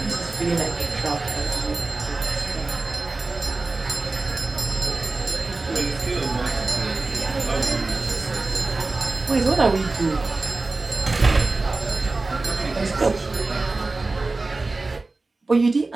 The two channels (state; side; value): quieter; left; 3.4 dB